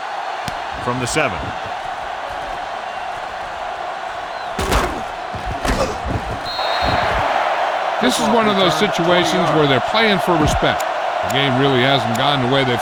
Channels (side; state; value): both; identical; correlation 1.00